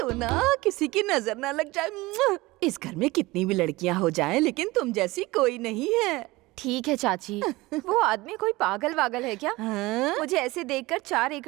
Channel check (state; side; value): quieter; left; 20.7 dB